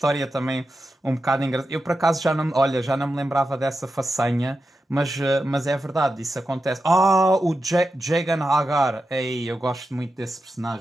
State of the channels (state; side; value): normal; both; correlation 0.90